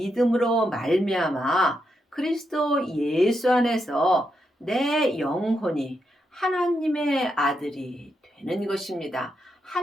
말미암아 그리스도 예수 안에서 내 영혼이 하나님의 아들이 되는 것입니다.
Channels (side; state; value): both; normal; correlation 0.83